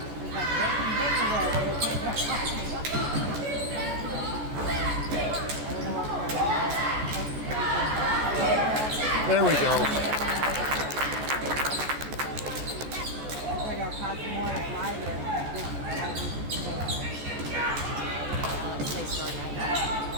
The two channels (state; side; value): late; left; 14 ms